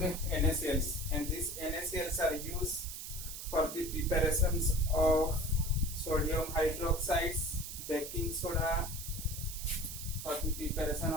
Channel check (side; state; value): right; noise; hiss, 8 dB below the sound